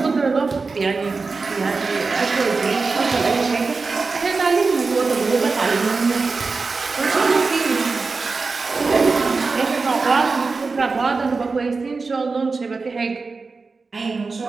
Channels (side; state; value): left; quieter; 4.2 dB